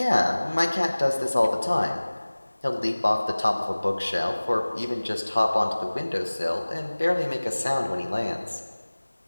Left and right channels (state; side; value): inverted; both; correlation -1.00